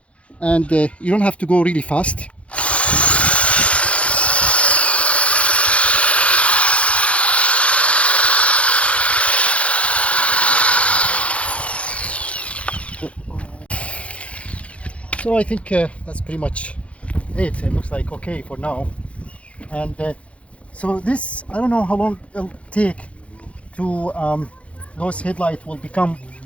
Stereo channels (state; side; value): late; right; 0.062 ms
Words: and you don't have to go really fast. So I think that's pretty much it. It looks like okay for now. And so this, I don't know how long it'll take to those headlights will become